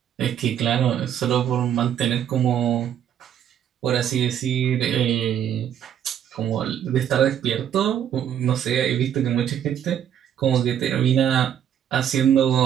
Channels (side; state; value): left; quieter; 9.7 dB